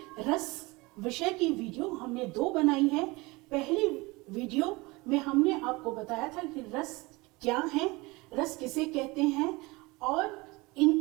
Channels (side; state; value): left; quieter; 23.8 dB